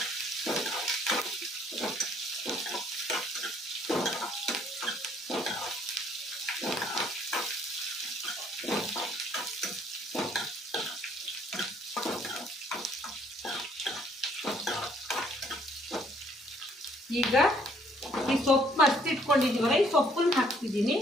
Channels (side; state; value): both; normal; correlation 0.64